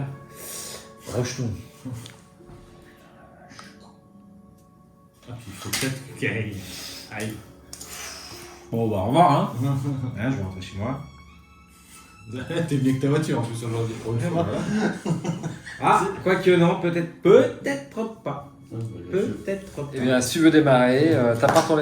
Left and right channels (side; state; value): both; identical; correlation 1.00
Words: Rejetons. Ah, puis il faut peut-être qu'il aille. Bon, bah, au revoir, hein. Hein, je vais rentrer chez moi. T'es mieux que ta voiture en plus aujourd'hui. Ah, quoique non, peut-être pas. Peut-être pas. Eh bien, si tu veux démarrer, t'as pas